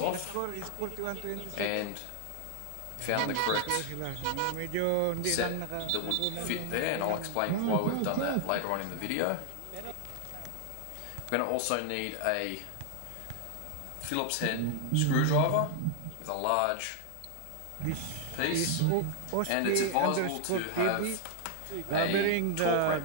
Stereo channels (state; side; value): different; both; correlation 0.00